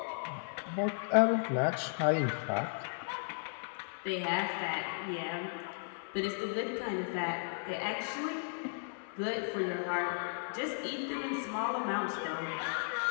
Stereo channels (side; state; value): right; silent; 54 dB below the other